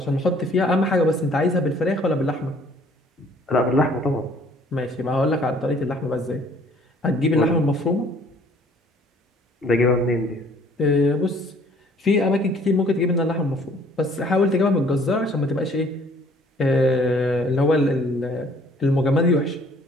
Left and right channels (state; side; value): normal; both; correlation 0.57